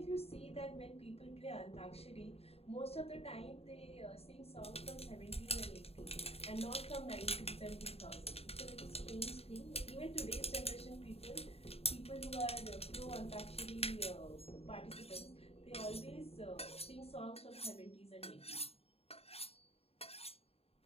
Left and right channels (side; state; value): right; late; 0.29 ms